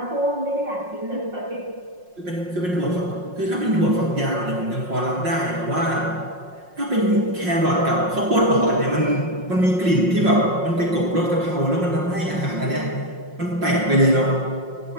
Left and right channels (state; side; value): late; left; 5.6 ms